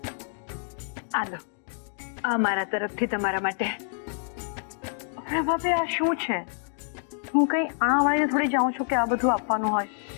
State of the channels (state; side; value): silent; right; 59 dB below the other